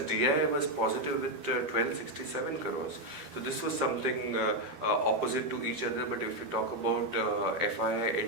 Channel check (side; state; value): left; late; 12 ms